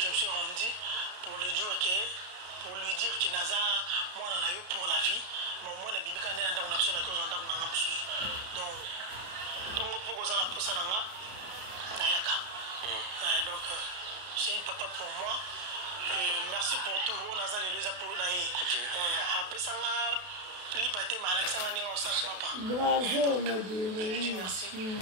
me suis rendu pour le dire que pour lui dire que naza moi on a eu pour la vie mais moi na bibi quand on a besoin de cause on a donc pour cause on a pour ça nanga nayaka donc c'est un papa pour moi et merci pour tout on a ça les deux pour naé après ça liberté mais Alexandre Ninga on s'en pas. Bravo Modero. Je dis merci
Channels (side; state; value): left; late; 33 ms